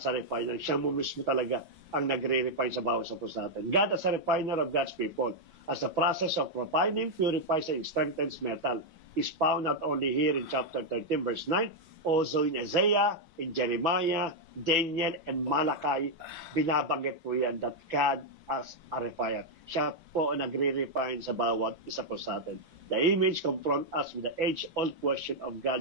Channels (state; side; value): late; left; 6.0 ms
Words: a refiner. Siya mo mismo talaga ang nagre-refine sa bawat sa puso natin. God as a refiner of God's people. As the process of refining, purifies and strengthens metal is found not only here in chapter 13 verse 9, also in Isaiah, in Jeremiah, Daniel, and Malachi, binabanggit po yan that God as a refiner. Siya po nagre-refine sa bawat isa po sa atin. The image confront us with the age-old question of